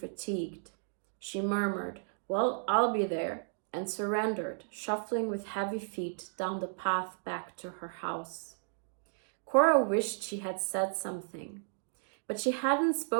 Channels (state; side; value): silent; left; digital silence